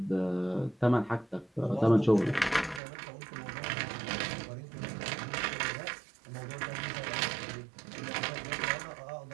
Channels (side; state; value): left; drops out; at 2.8 s